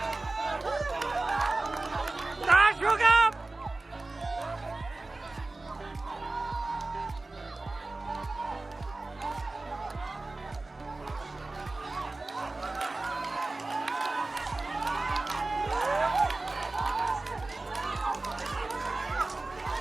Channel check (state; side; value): quieter; left; 3.2 dB